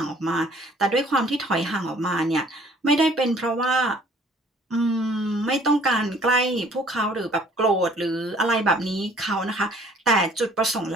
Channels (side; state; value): both; normal; correlation 0.56